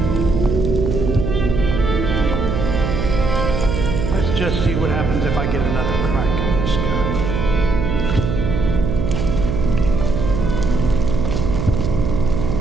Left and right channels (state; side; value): noise; right; hum, 1 dB below the sound